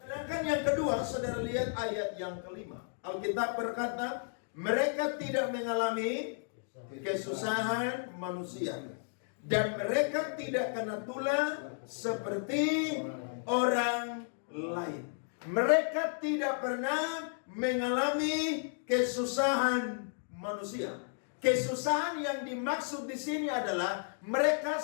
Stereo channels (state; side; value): silent; right; digital silence